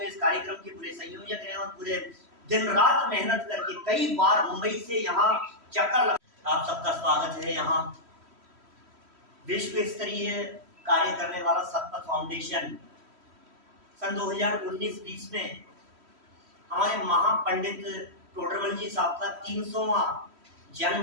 इस कार्यक्रम के पूरे संयोजक हैं और पूरे दिन रात मेहनत करके कई बार मुंबई से यहाँ चक्कर लगा। आप सबका स्वागत है। यहाँ विश्व स्तरीय कार्य करने वाला सतपथ फाउंडेशन सन 2019-20 में हमारे महापंडित टोडरमल जी साहब का 300वां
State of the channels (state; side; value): late; left; 3.1 ms